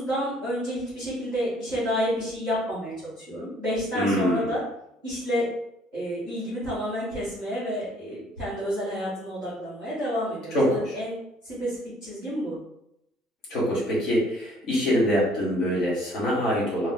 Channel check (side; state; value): both; normal; correlation 0.60